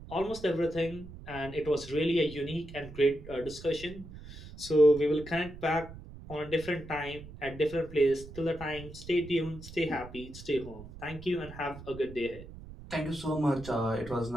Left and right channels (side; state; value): right; noise; rumble, 15 dB below the sound